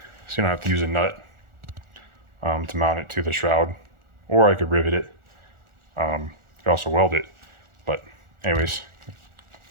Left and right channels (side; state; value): left; late; 1.4 ms